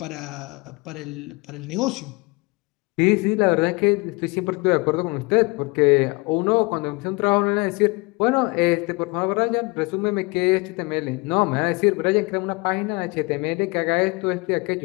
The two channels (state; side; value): quieter; right; 26.9 dB